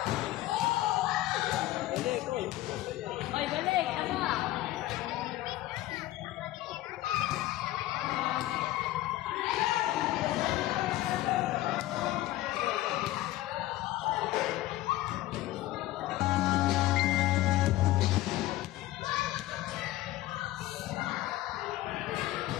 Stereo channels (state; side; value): quieter; right; 16.0 dB